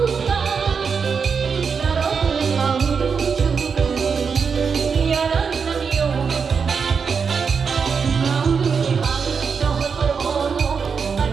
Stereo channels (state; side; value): quieter; left; 5.8 dB